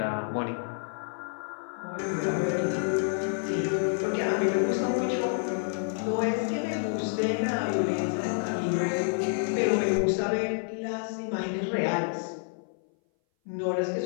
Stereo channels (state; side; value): silent; right; 58 dB below the other